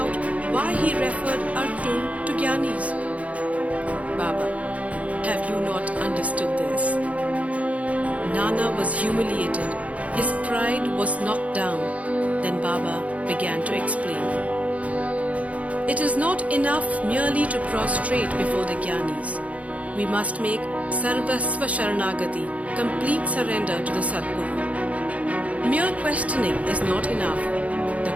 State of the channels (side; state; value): left; late; 0.067 ms